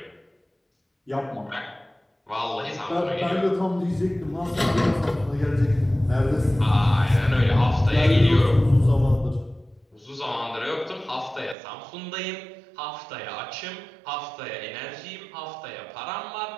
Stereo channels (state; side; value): drops out; left; at 11.6 s